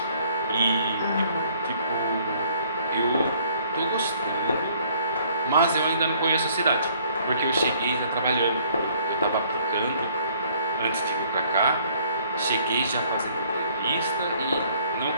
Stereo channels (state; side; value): inverted; both; correlation -0.61